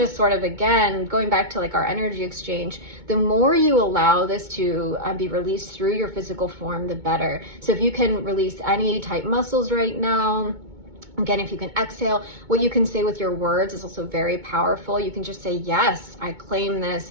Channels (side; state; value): left; late; 2.2 ms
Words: sort of, again, going back to like our energy exchange, the more you allow this to be released through your physical form, the better. So if you can release any tight muscles right now, again, if you can exhale, what you can say with your words is also very powerful. You can just say, yes, I claim